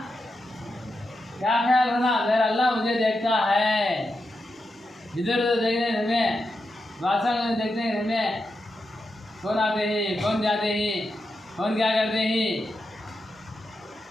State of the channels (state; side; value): normal; both; correlation 0.87